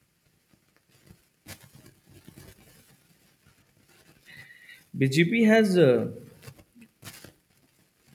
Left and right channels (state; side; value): identical; both; correlation 1.00